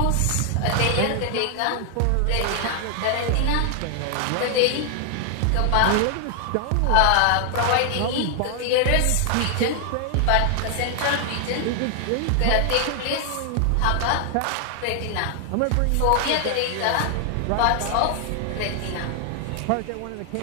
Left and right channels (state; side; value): different; both; correlation 0.00